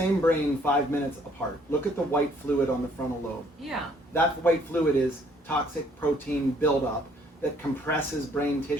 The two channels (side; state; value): both; normal; correlation 0.63